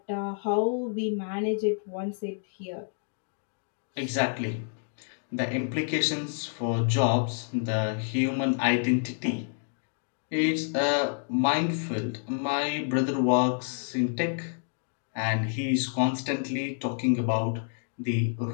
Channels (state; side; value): silent; right; digital silence